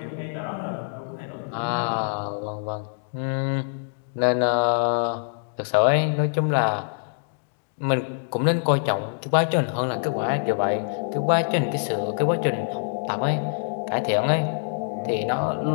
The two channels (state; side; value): silent; right; digital silence